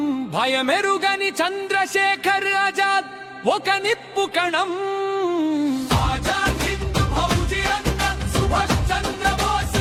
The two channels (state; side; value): identical; both; correlation 1.00